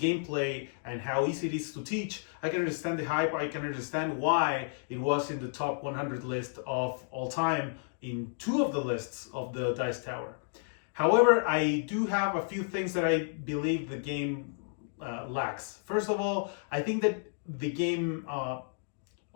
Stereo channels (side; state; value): right; silent; digital silence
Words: and how easy it is to teach, I can understand the hype. I can understand why it was in the top 100 list of all time in 2 of the lists of the Dice Tower. However, I do have a few things that I believe the game lacks. First of all, I think that the game,